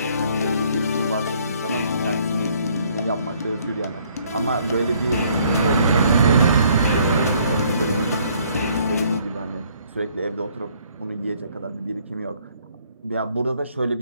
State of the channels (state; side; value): inverted; both; correlation -0.64